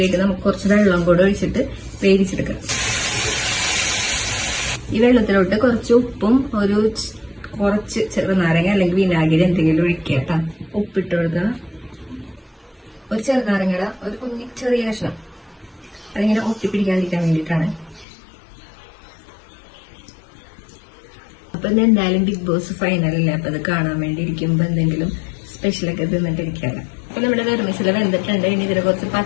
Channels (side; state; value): right; drops out; at 18.1 s